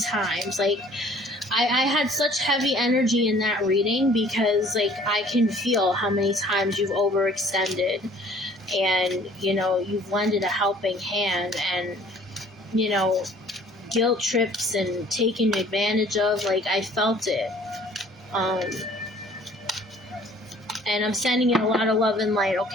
Like, I had such heavy energy in that reading because, like, I can feel how many times you've overextended. And, you know, you've lended a helping hand and, you know, guilt trips and taken advantage of. Like, I felt it. And I'm sending you a lot of love and light,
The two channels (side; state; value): both; normal; correlation 0.54